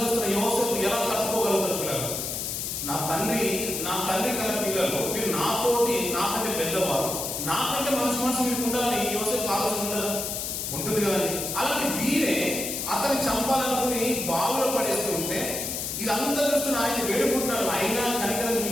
యోసేపు ఎలా తట్టుకోగలుగుతారు? పిల్లలు, నా తండ్రి కల పిల్లలు, మీరు నాకంటే పెద్దవారు, నాకంటే మనసు మీకు ఉండాలని యోసేపు ఆలోచన ఉండదా? ఉంటుంది కదండి. అలాంటి వీరే అతన్ని చంపాలనుకుని బావులో పడేస్తూ ఉంటే ఇదంతా చూస్తున్న ఆయన వేడుకుంటున్నారు. అయినా కనికరం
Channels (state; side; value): noise; left; hiss, 3 dB below the sound